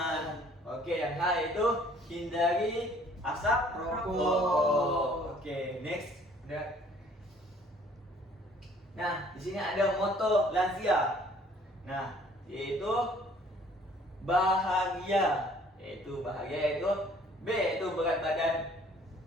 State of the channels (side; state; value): both; normal; correlation 0.57